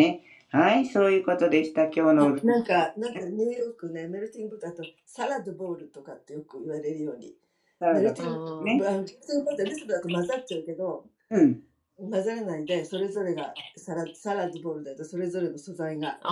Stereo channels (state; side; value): identical; both; correlation 1.00